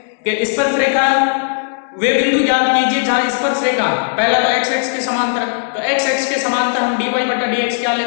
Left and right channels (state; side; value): silent; right; digital silence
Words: कि स्पर्श रेखा वे बिंदु ज्ञात कीजिए जहां स्पर्श रेखा, पहला तो x के समांतर, तो x के समांतर हम dy/dx क्या